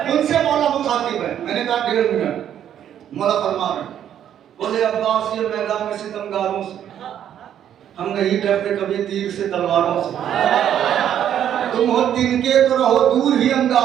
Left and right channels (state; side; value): quieter; left; 10.0 dB